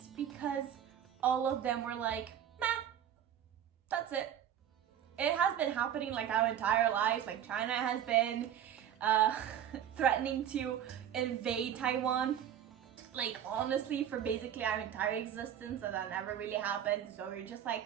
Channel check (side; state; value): left; quieter; 9.9 dB